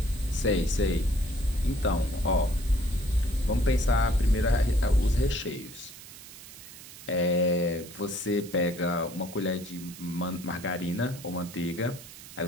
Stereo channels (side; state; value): right; noise; hiss, 16 dB below the sound